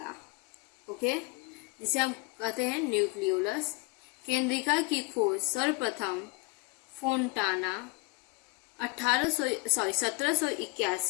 ओके, जिसे हम कहते हैं न्यूक्लियोलस। केंद्रिका की खोज सर्वप्रथम फोंटाना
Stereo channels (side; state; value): right; quieter; 25.8 dB